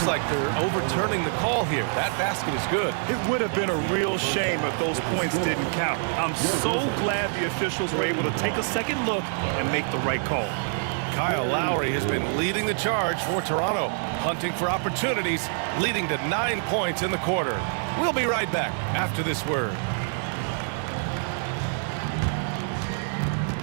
like they're overturning the call here. That basket is good. It would have been a real shame if those points didn't count. I'm so glad the officials were able to take a second look and make the right call. Kyle Lowry has been leading the charge for Toronto, hunting for opportunities, leading to 9 points in the quarter. We'll be right back after this word.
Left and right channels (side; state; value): left; silent; 59 dB below the other